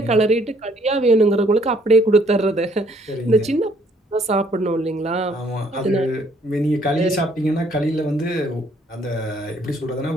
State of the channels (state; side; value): normal; both; correlation 0.64